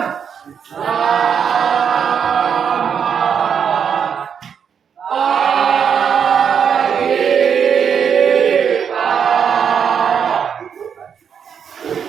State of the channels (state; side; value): quieter; left; 7.4 dB